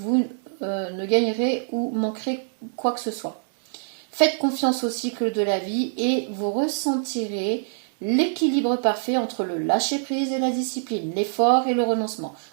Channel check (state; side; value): silent; left; digital silence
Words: vous ne gagnerez ou manquerez quoi que ce soit. Faites confiance au cycle de la vie et vous ressentirez l'équilibre parfait entre le lâcher-prise et la discipline, l'effort et le renoncement.